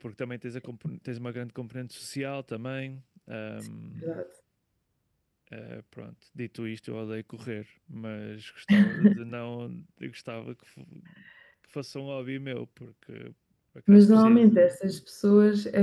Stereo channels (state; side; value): identical; both; correlation 1.00